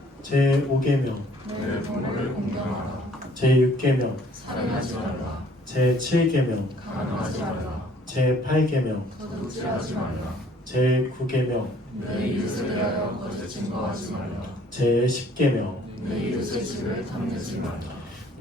제 5계명 제6계명, 살인하지 말라. 제7계명, 간음하지 말라. 제8계명, 도둑질하지 말라. 제9계명, 내 이웃에 대하여 거짓 증거하지 말라. 제10계명. 내 이웃의 집을 탐내지 말라.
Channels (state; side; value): normal; both; correlation 0.58